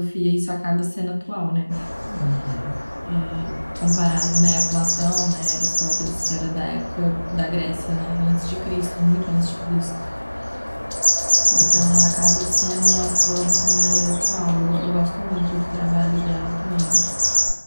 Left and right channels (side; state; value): both; inverted; correlation -1.00